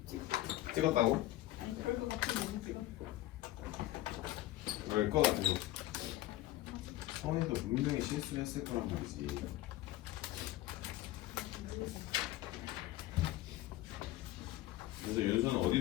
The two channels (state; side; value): quieter; right; 16.1 dB